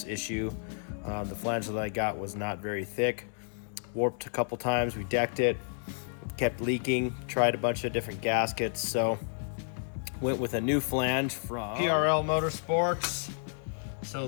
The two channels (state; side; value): silent; right; 57 dB below the other